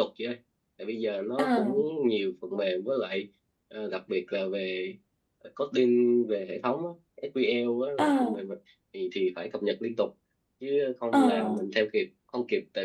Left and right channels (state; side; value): identical; both; correlation 1.00